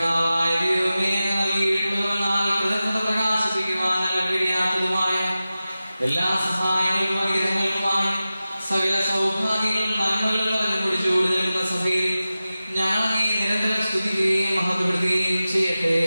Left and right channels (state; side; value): inverted; both; correlation -0.94